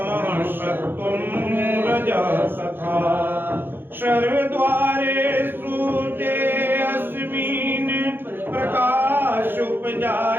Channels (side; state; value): left; late; 0.10 ms